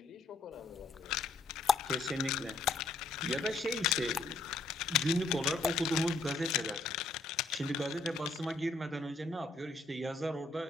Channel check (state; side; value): quieter; right; 3.4 dB